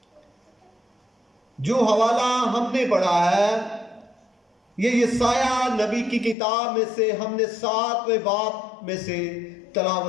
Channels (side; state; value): right; drops out; at 6.4 s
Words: जो हवाला हमने पढ़ा है ये यशाया नबी की किताब में से हमने 7वें बाब में से